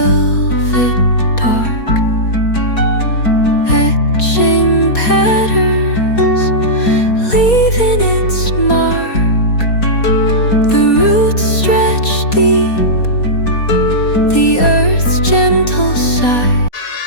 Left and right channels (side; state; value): right; late; 4.2 ms